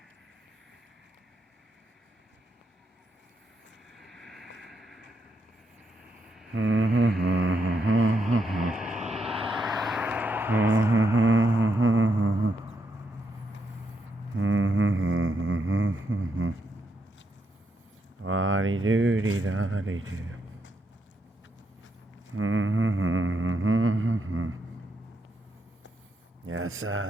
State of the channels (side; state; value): both; normal; correlation 0.79